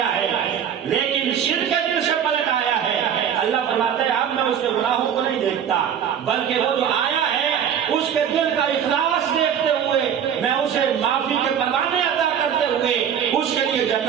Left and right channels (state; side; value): quieter; left; 8.6 dB